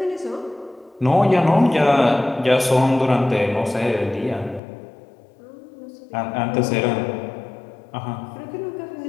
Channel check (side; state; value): right; drops out; at 4.6 s